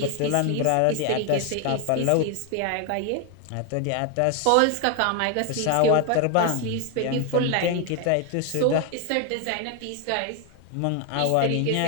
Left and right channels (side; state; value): both; different; correlation 0.01